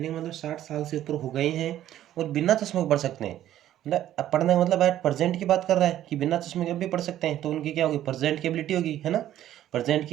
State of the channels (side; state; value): left; quieter; 12.4 dB